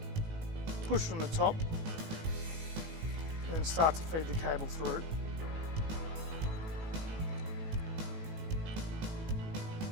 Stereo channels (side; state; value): left; late; 18 ms